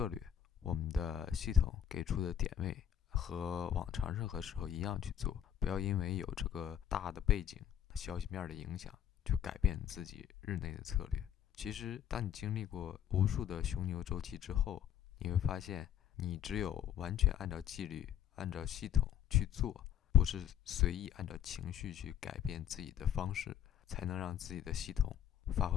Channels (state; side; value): quieter; right; 9.8 dB